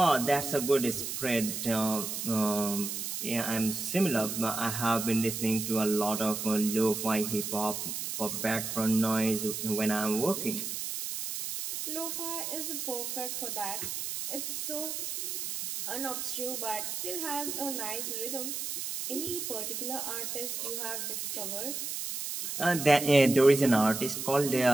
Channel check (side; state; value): right; noise; hiss, 4 dB below the sound